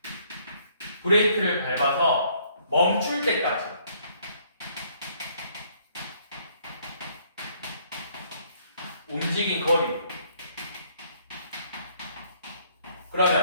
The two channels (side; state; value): both; inverted; correlation -0.65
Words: 브레이크를 밟아서 멈출 때까지 움직인 거리.